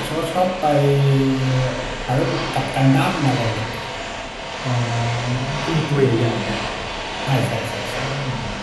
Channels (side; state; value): both; identical; correlation 1.00